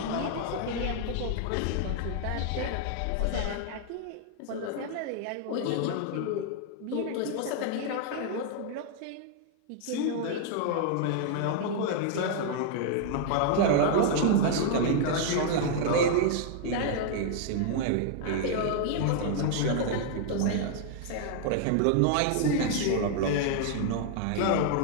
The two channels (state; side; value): different; both; correlation 0.00